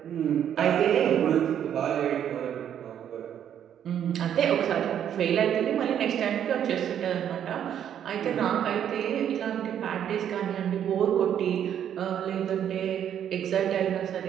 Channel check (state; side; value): quieter; left; 9.6 dB